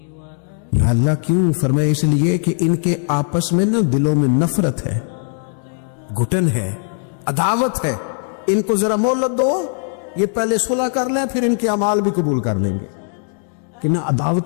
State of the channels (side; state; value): right; silent; digital silence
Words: یا اللہ کیوں؟ فرمایا اس لیے کہ ان کے آپس میں نا دلوں میں نفرت ہے, گھٹن ہے, عداوت ہے. ان کو ذرا مہلت دو, یہ پہلے صلح کر لیں پھر ان کے اعمال بھی قبول کر لیں گے. کہ نہ